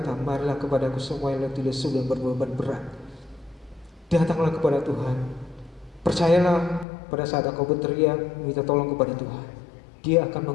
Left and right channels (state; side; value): drops out; right; at 6.9 s